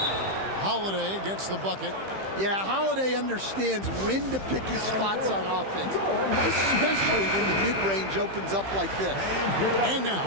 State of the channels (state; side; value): late; left; 15 ms